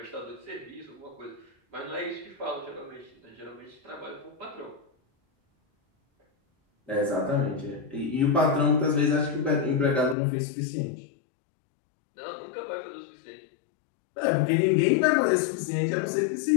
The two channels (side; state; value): right; drops out; at 10.2 s